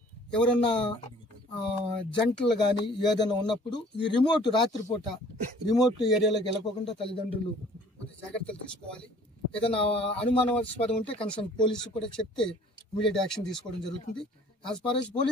ఎవరన్నా జంటలు కానీ ఏదైనా ఉన్నప్పుడు ఈ రాత్రిపూట రిమోట్ ఏరియాలోకి వెళ్ళకోకుండా తల్లిదండ్రులు జాగ్రత్తలు తీసుకోవాలి. ఏదైనా అనుమానాస్పదం ఉంటే కన్సర్న్ పోలీసు కూడా చెప్తే ఇమీడియట్ యాక్షన్ తీసుకోవడం జరుగుతుంది. As far as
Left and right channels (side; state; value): both; normal; correlation 0.53